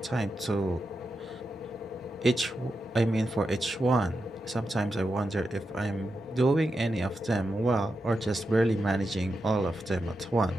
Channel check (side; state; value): both; normal; correlation 0.88